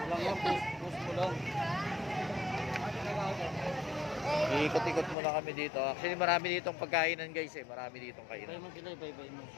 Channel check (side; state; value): right; drops out; at 5.2 s